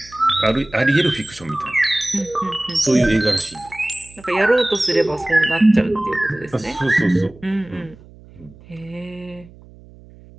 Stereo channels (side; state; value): right; noise; hum, 23 dB below the sound